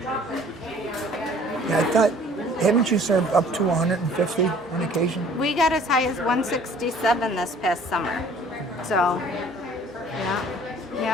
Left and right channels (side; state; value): both; normal; correlation 0.53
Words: Yeah, I thought, haven't you served up to 150 on occasion? We got as high as 167 this past summer. So,